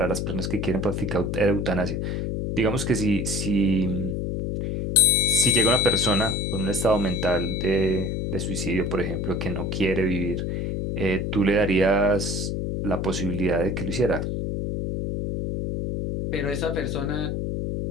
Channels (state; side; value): noise; left; hum, 2 dB below the sound